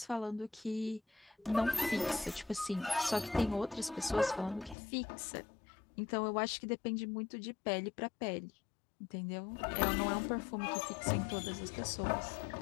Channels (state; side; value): drops out; right; at 4.8 s